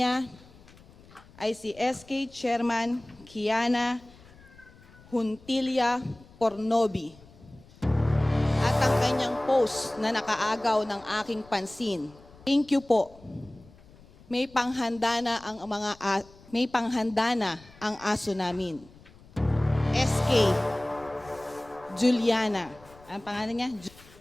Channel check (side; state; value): left; noise; rumble, 24 dB below the sound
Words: ay si SK Chairman Kiana Juntilla Pornobi. At ang kanyang post na nakaagaw ng aking pansin. Thank you po. May panghanda na ang aso namin. SK Juliana. Ang pangalan niya?